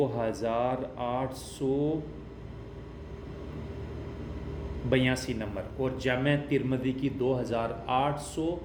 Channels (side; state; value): both; identical; correlation 1.00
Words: نمبر، اور جامع ترمذی کی